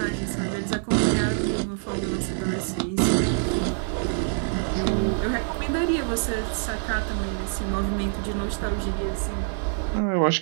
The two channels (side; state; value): left; silent; 56 dB below the other